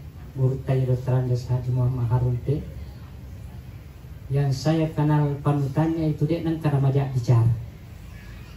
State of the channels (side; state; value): both; identical; correlation 1.00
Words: Guru Dr. Andes Haji Muhammad Harumpe yang saya kenal panutannya itu dia nang karena majak bicara,